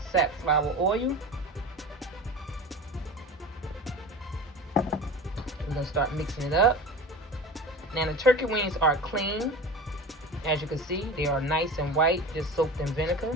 safflower oil. We're gonna start mixing it up. Now the turkey wings are clean. As you can see, they are nice and white, just soaked in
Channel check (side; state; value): both; normal; correlation 0.33